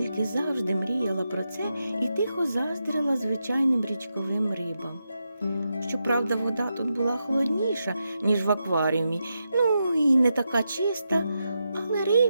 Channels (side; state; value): both; inverted; correlation -0.86